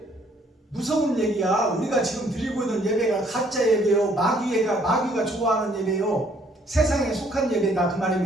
무서운 얘기야. 우리가 지금 드리고 있는 예배가 가짜 예배요, 마귀가 좋아하는 예배요, 세상에 속한 예배다 그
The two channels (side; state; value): both; normal; correlation 0.63